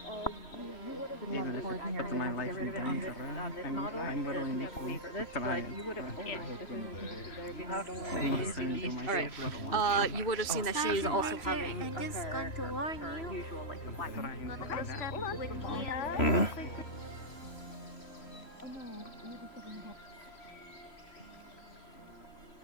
Even if it puts my life in danger, I'm willing to try. You would have seen that she is also having her usual like the white.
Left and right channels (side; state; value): right; late; 3.1 ms